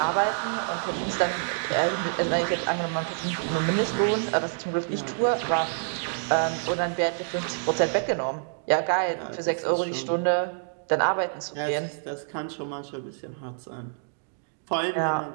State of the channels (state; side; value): silent; left; digital silence